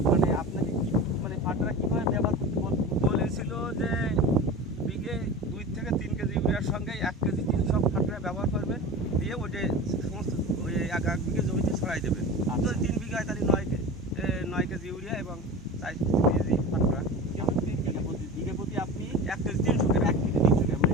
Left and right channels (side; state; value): both; normal; correlation 0.32